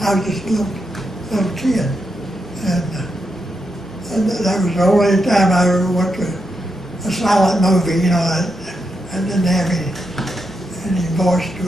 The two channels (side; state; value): both; normal; correlation 0.84